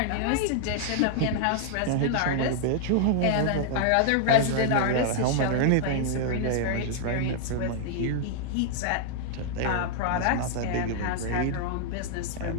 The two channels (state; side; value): different; both; correlation 0.00